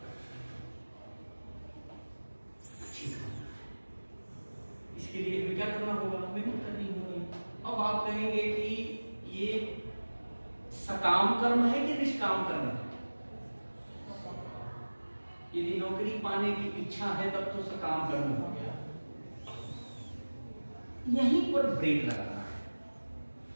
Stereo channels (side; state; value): both; inverted; correlation -1.00